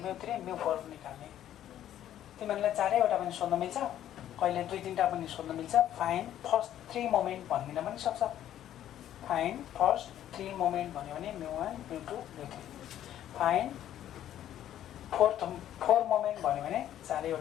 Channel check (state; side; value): quieter; right; 11.6 dB